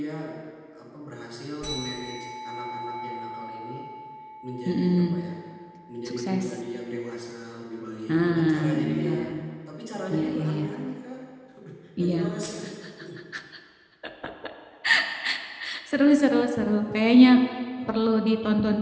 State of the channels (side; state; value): both; identical; correlation 1.00